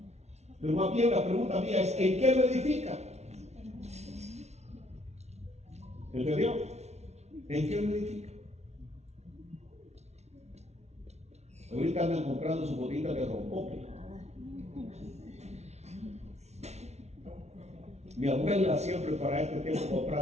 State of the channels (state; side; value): late; left; 0.32 ms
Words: Pero más bien la pregunta mía es, ¿en qué lo edifica? ¿Entendió? ¿En qué lo edifica? Ahorita andan comprando su botita de rompope. Mi abuela siempre para este tiempo